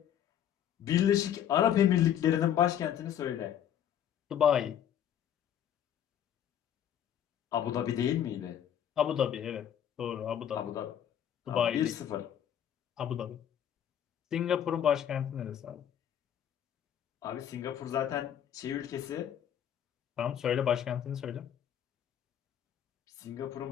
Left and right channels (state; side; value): quieter; right; 9.8 dB